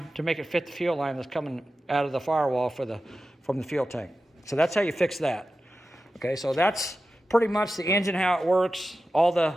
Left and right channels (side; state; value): both; normal; correlation 0.93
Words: to make it fit the fuel line that's coming out of the firewall from the fuel tank. So that's how you fix that. Okay, so that's pretty much the engine, how it works, all